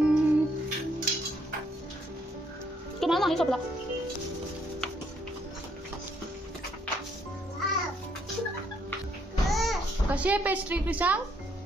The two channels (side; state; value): both; normal; correlation 0.71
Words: तुम्हाला नाही सोपला. कशी आहे पेस्ट्री क्रिशांक?